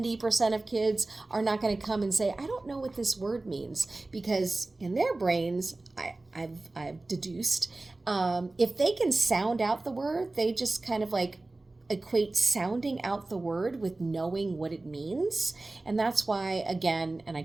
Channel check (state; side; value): quieter; left; 3.0 dB